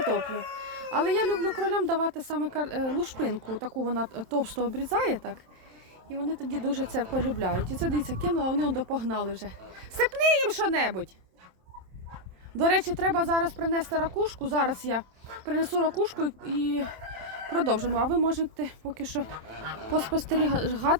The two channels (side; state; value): left; late; 27 ms